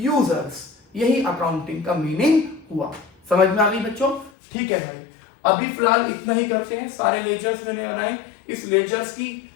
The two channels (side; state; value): right; drops out; at 4.3 s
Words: यही अकाउंटिंग का मीनिंग हुआ। समझ में आ गई बच्चों, ठीक है भाई। अभी फिलहाल इतना ही करते हैं, सारे लेजर्स मैंने बनाए, इस लेजर्स की